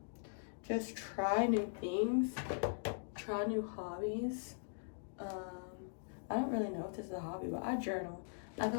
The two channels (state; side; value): silent; right; digital silence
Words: just try new things, try new hobbies. I don't really know if this is a hobby, but I journal. I feel